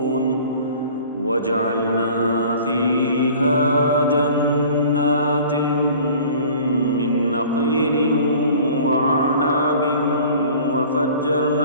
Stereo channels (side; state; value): both; inverted; correlation -0.46